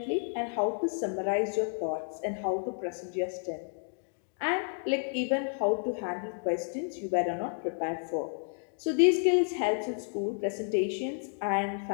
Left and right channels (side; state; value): right; silent; 56 dB below the other